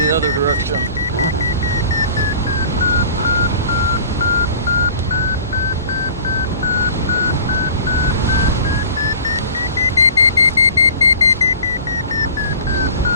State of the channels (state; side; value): inverted; both; correlation -0.45